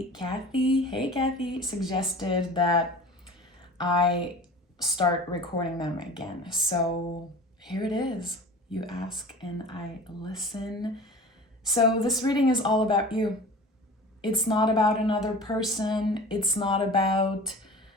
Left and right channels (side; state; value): both; normal; correlation 0.39